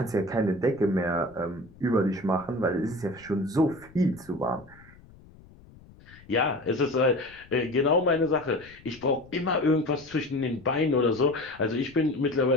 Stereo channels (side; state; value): left; noise; rumble, 24 dB below the sound